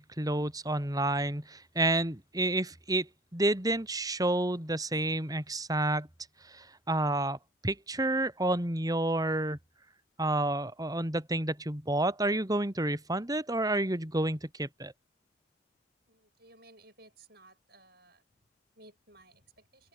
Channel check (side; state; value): both; normal; correlation 0.50